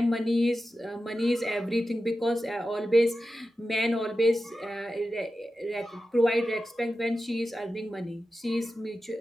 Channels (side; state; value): both; normal; correlation 0.92